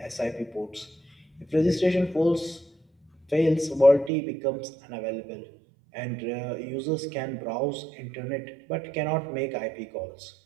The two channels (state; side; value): drops out; left; at 4.1 s